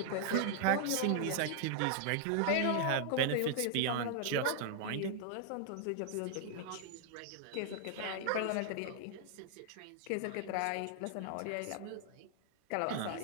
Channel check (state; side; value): different; both; correlation -0.01